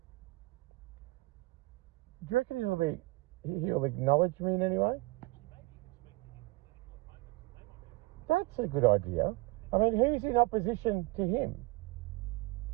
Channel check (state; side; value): quieter; left; 22.0 dB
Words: Do you reckon he'll acknowledge me in any way? That's a good idea. I mean, who's in opposition to him?